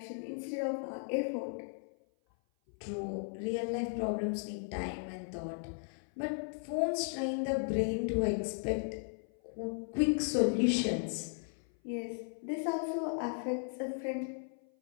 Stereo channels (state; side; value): silent; right; 54 dB below the other